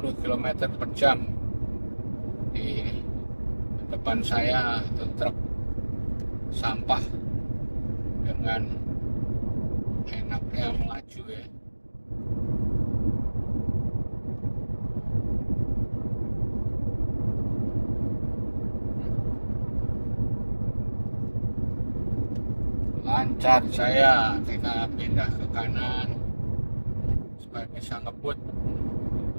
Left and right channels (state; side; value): inverted; both; correlation -1.00